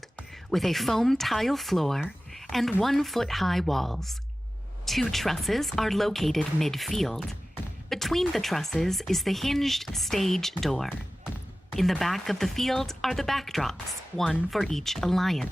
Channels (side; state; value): both; normal; correlation 0.96